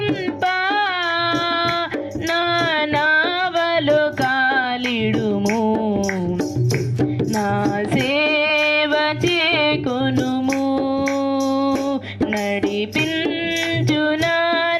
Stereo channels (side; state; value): both; identical; correlation 1.00